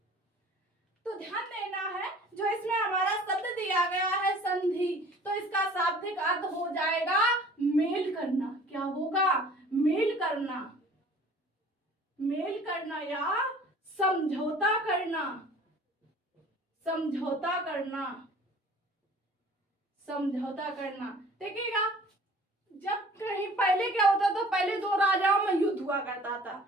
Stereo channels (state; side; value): normal; both; correlation 0.49